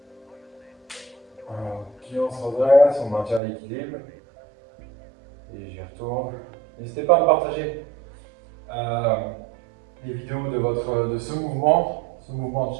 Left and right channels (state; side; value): drops out; left; at 3.4 s